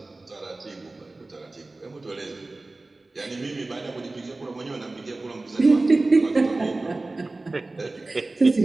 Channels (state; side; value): quieter; left; 3.1 dB